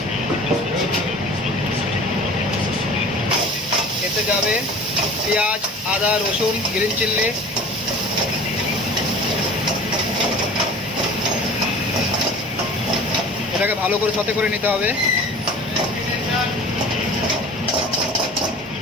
এতে যাবে পেঁয়াজ, আদা, রসুন, গ্রিন চিল্লি, এটাকে ভালো করে সতে করে নিতে হবে।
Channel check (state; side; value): normal; both; correlation 0.41